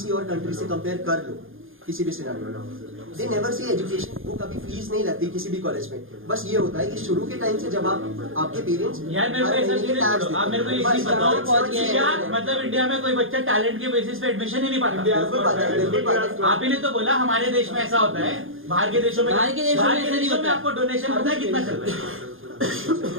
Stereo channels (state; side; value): late; left; 0.59 ms